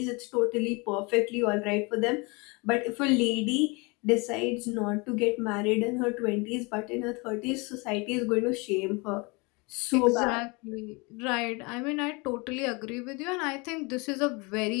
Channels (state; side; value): quieter; right; 28.3 dB